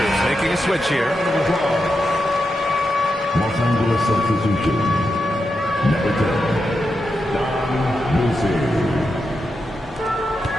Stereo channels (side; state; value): both; normal; correlation 0.87